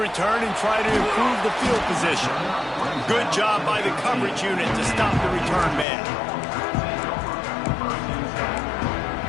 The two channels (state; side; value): drops out; right; at 5.9 s